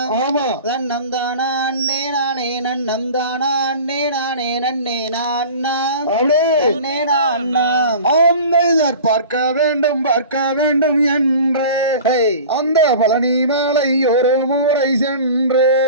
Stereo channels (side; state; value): both; inverted; correlation -0.39